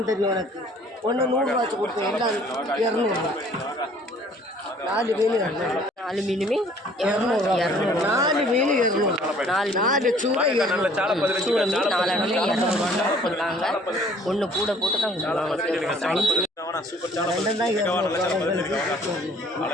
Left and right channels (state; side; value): normal; both; correlation 0.56